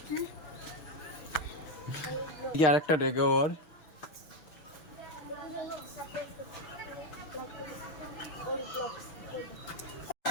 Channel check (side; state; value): right; late; 6.5 ms